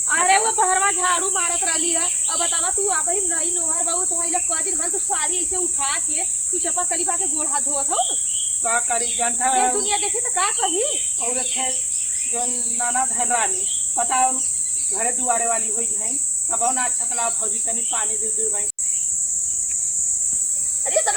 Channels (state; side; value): identical; both; correlation 1.00